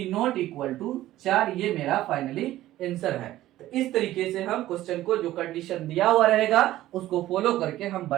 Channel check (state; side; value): quieter; left; 14.7 dB